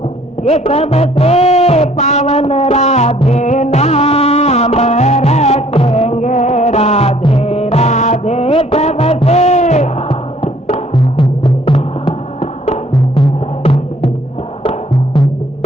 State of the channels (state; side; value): normal; both; correlation 0.59